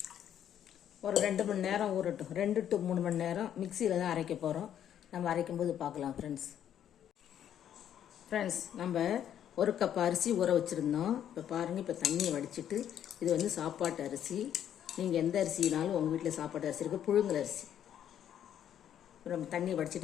ஒரு 2 மணி நேரம் ஊறட்டும். 2 to 3 மணி நேரம் மிக்சியில் தான் அரைக்க போகிறோம். நம்ம அரைக்கும்போது பார்க்கலாம் ஃப்ரெண்ட்ஸ். நம்ம 1 கப் அரிசி ஊற வச்சுருந்தோம். இப்போ பாருங்கள், இப்போ தண்ணியை வடிச்சிட்டு இது சாப்பாட்டு அரிசி. நீங்கள் எந்த அரிசினாலும் உங்கள் வீட்டில் சாப்பாட்டு அரிசி இருக்குது, புழுங்கல் அரிசி. இப்போ நம்ம தண்ணியை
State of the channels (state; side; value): quieter; right; 10.1 dB